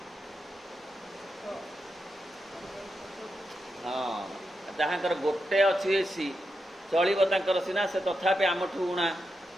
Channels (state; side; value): normal; both; correlation 0.86